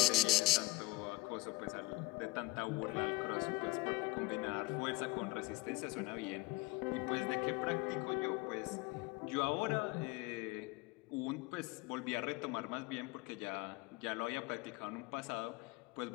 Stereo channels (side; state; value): right; quieter; 21.3 dB